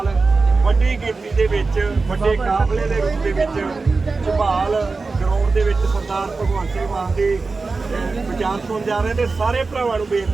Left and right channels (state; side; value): quieter; left; 4.0 dB